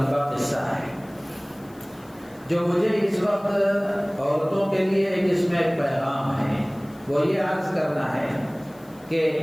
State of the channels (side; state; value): left; noise; hiss, 27 dB below the sound